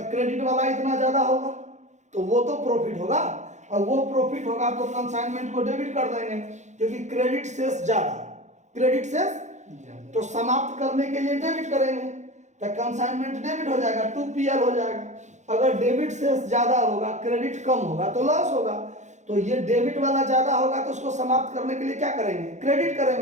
क्रेडिट वाला इतना ज्यादा होगा, तो वो तो प्रॉफिट होगा। और वो प्रॉफिट होगा तो कंसाइनमेंट को डेबिट कर देंगे, क्योंकि क्रेडिट शेष ज्यादा, क्रेडिट शेष तो समाप्त करने के लिए डेबिट करेंगे, तो कंसाइनमेंट डेबिट हो जाएगा, 2PL हो जाएगा। अगर डेबिट शेष ज्यादा होगा, क्रेडिट कम होगा तो लॉस होगा। तो ये डेबिट वाला ज्यादा होगा, तो उसको समाप्त करने के लिए क्या करेंगे, क्रेडिट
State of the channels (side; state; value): left; late; 0.34 ms